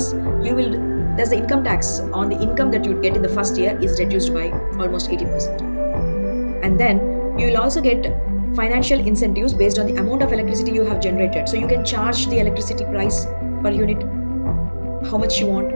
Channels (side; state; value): both; inverted; correlation -1.00